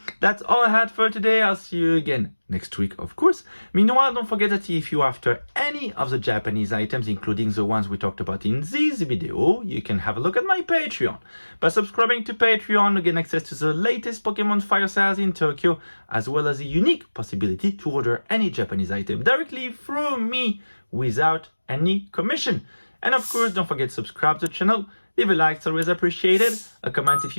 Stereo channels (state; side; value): inverted; both; correlation -1.00